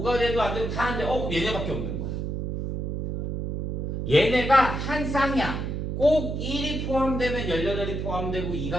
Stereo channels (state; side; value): noise; right; hum, 3 dB below the sound